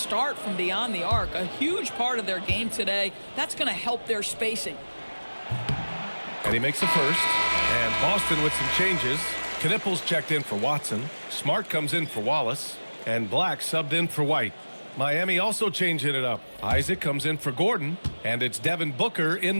from beyond the arc. A huge part of their game today. That's going to help their spacing. And he makes the first. And Boston with some changes. Knipples checked in for Watson. Smart comes in for Wallace. And Black subbed in for White. Miami also changing it up. Isaac comes in for Gordon. And it's Devin Booker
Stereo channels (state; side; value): inverted; both; correlation -1.00